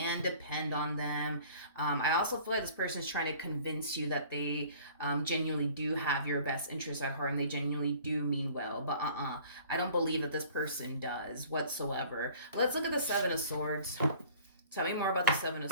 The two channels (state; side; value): inverted; both; correlation -0.50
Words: depend on them. I also feel like this person is trying to convince you that they genuinely do have your best interests at heart and they genuinely do mean well. But I don't believe that this person does whatsoever. Let's look at the Seven of Swords. Tell me more about the Seven of